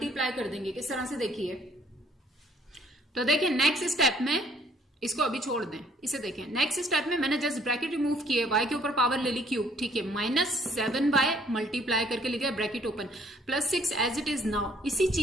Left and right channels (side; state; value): both; normal; correlation 0.62